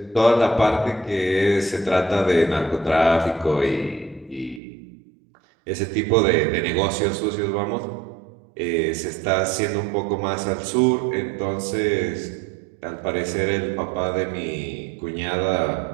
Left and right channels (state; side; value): drops out; left; at 4.6 s